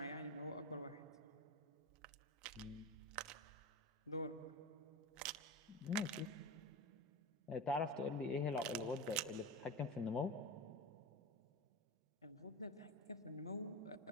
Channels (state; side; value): normal; both; correlation 0.27